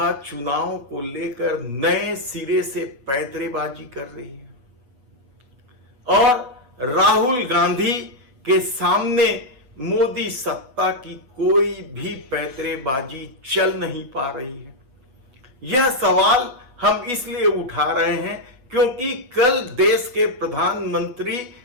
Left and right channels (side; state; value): left; late; 8.1 ms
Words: चुनाव को लेकर नए सिरे से पैंतरेबाजी कर रही है और राहुल गांधी के सामने मोदी सत्ता की कोई भी पैंतरेबाजी चल नहीं पा रही है? यह सवाल हम इसलिए उठा रहे हैं क्योंकि कल देश के प्रधानमंत्री